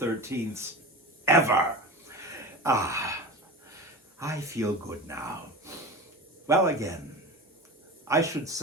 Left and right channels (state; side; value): normal; both; correlation 0.29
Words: ever. I feel good now. Well, again, I should